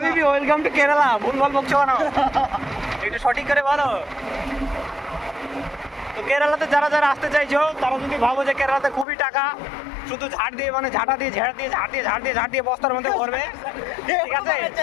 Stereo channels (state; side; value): drops out; right; at 9.1 s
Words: ওয়েলকাম টু কেরালা। ভুলভাল বকছো কেন? একটু সঠিক করে বলো। তো কেরালাতে যারা আসতে চাইছো, তারা যদি ভাবো যে কেরালাতে খুবই টাকা, শুধু ঝাড় দিয়ে বস্তার মধ্যে ভরবে, ঠিক আছে?